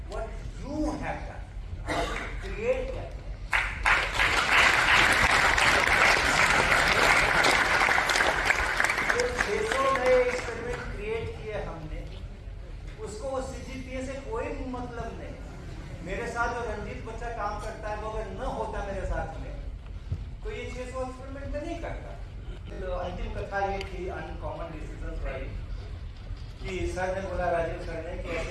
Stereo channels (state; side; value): identical; both; correlation 1.00